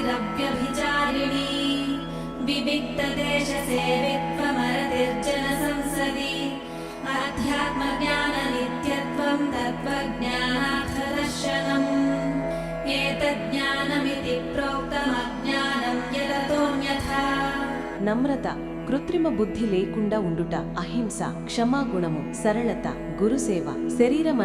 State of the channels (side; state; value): both; identical; correlation 1.00